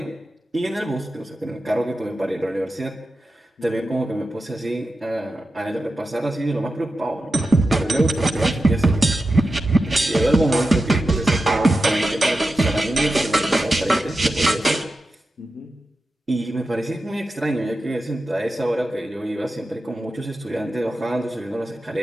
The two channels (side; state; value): both; normal; correlation 0.91